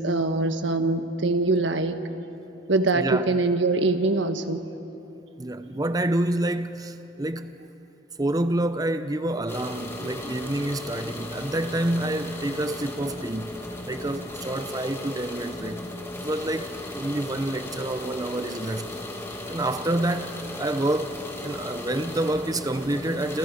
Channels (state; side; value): normal; both; correlation 0.52